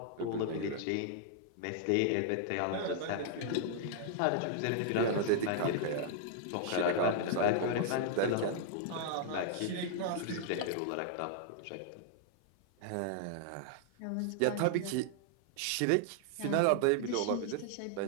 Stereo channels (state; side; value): different; both; correlation -0.01